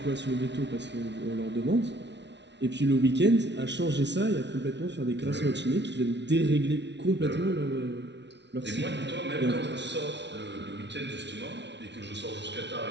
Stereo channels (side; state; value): left; late; 0.51 ms